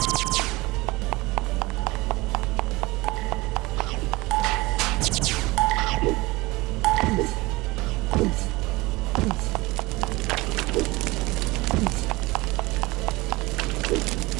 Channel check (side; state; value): left; quieter; 22.1 dB